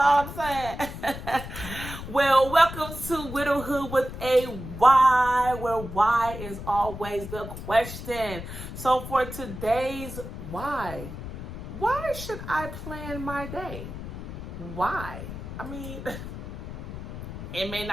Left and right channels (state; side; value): noise; left; rumble, 9 dB below the sound